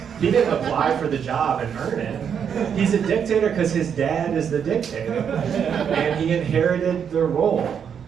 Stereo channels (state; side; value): quieter; left; 7.7 dB